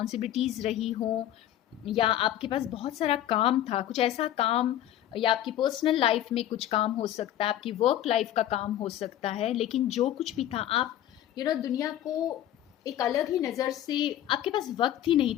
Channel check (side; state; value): right; quieter; 12.2 dB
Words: रही हो, या आपके पास बहुत सारा काम था, कुछ ऐसा काम, या आपकी पर्सनल लाइफ में कुछ काम हो सकता है, आपकी वर्क लाइफ का काम हो सकता है। लेकिन जो कुछ भी था, आप दुनिया को एक अलग ही नज़र से, आपके पास वक्त ही नहीं